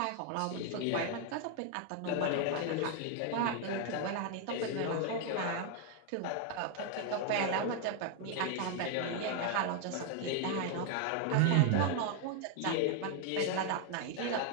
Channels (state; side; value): different; both; correlation 0.01